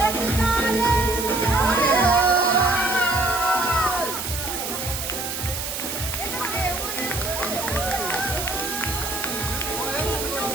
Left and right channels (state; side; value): noise; right; hiss, 5 dB below the sound